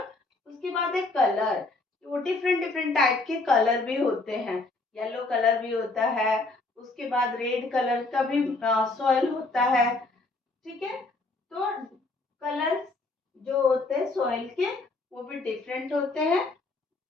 उसके बाद है कलर, वो डिफरेंट डिफरेंट टाइप के कलर भी होते हैं। येलो कलर भी होता है, उसके बाद रेड कलर का भी सॉइल होता है। ठीक है, तो कलर जो होते हैं सॉइल के वो भी डिफरेंट होते हैं,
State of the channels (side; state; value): right; quieter; 3.3 dB